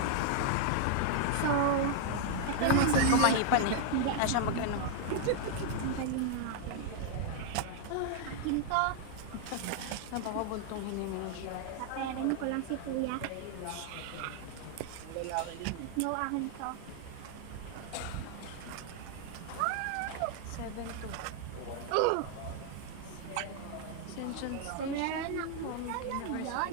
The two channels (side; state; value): both; different; correlation 0.00